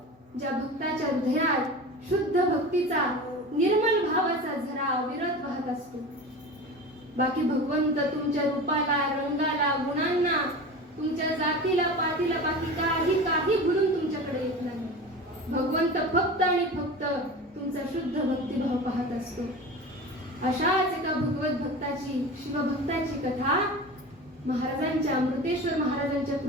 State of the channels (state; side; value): normal; both; correlation 0.32